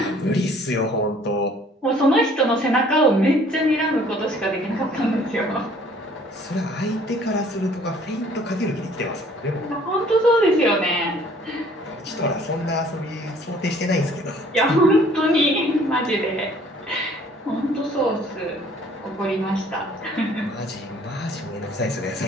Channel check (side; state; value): both; normal; correlation 0.56